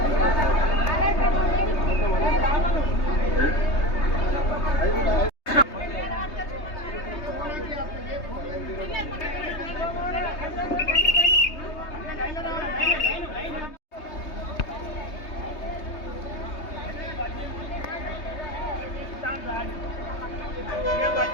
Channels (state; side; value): late; right; 3.2 ms